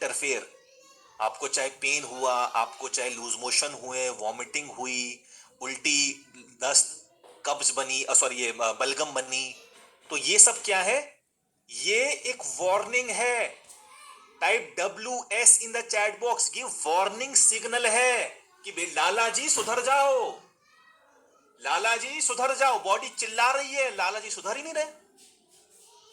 आपको चाहे पेन हुआ, आपको चाहे लूज मोशन हुए, वॉमिटिंग हुई, उल्टी, दस्त, कब्ज बनी, सॉरी ये बलगम बनी, तो ये सब क्या है, ये एक वार्निंग है। Type WS in the chat box, ये वार्निंग सिग्नल है कि लाला जी सुधर जाओ, लाला जी सुधर जाओ। बॉडी चिल्ला रही है, लाला जी सुधर ही नहीं रहे,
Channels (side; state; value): both; identical; correlation 1.00